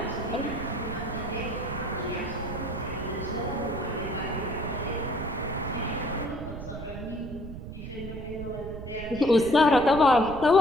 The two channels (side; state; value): right; noise; rumble, 10 dB below the sound